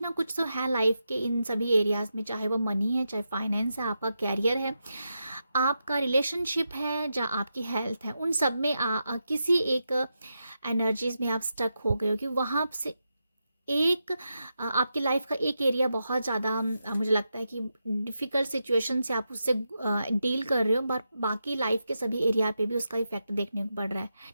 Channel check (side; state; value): both; inverted; correlation -0.87